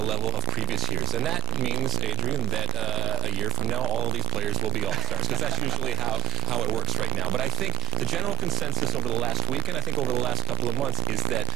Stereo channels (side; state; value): left; quieter; 11.2 dB